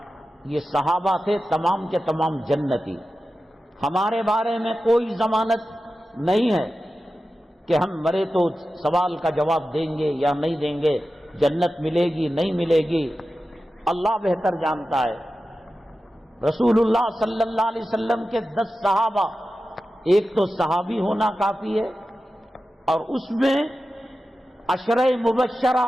یہ صحابہ تھے تمام کے تمام جنتی. ہمارے بارے میں کوئی ضمانت نہیں ہے کہ ہم مرے تو سوال کا جواب دیں گے یا نہیں دیں گے، جنت ملے گی نہیں ملے گی، اللہ بہتر جانتا ہے. رسول اللہ صلی اللہ علیہ وسلم کے 10 صحابہ، ایک تو صحابی ہونا کافی ہے، اور اس میں عشرہ مبشرہ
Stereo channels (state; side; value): normal; both; correlation 0.93